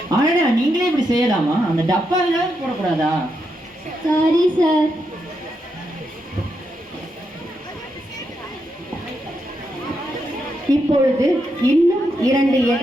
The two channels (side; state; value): both; normal; correlation 0.82